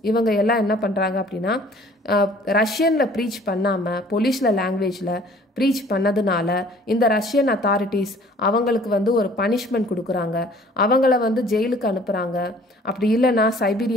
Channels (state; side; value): normal; both; correlation 0.53